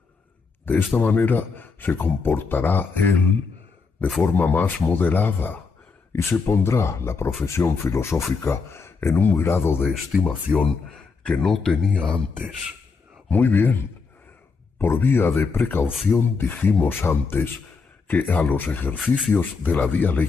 De esta manera se comportará él de forma más moderada y se pondrá la profesión filosófica en un grado de estimación que no tenía antes. Muy bien, por vía de precaución dijimos antes que a los ejercicios de la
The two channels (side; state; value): right; quieter; 4.7 dB